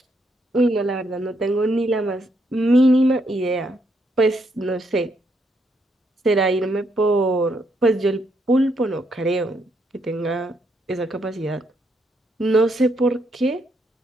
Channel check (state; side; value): normal; both; correlation 0.76